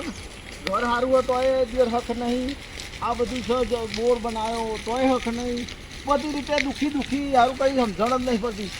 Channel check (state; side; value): identical; both; correlation 1.00